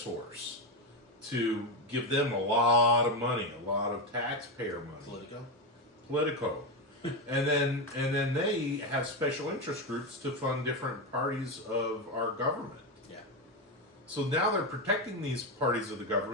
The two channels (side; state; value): both; normal; correlation 0.11